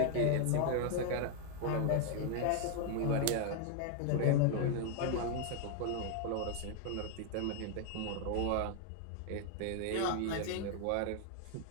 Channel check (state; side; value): different; both; correlation 0.00